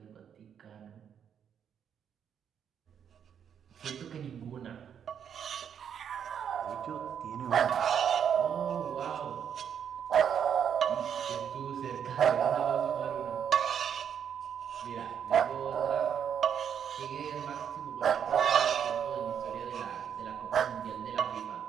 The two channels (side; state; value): left; quieter; 8.3 dB